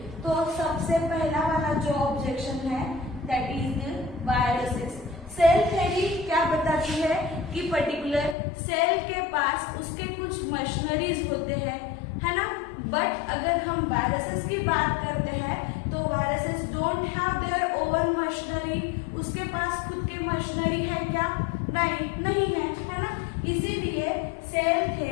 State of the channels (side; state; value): right; drops out; at 8.3 s